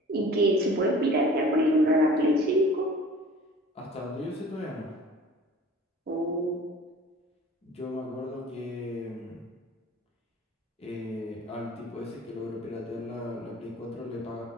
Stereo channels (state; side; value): normal; both; correlation 0.45